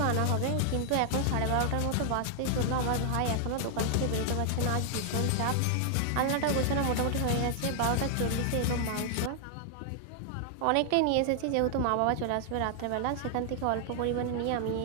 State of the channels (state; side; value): different; both; correlation 0.00